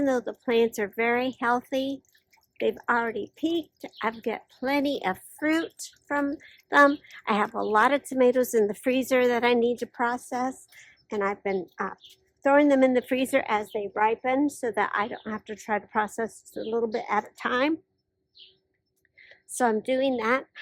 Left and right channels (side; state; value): both; identical; correlation 1.00